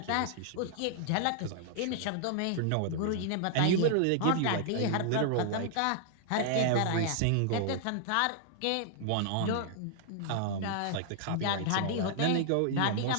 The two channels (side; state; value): both; different; correlation -0.01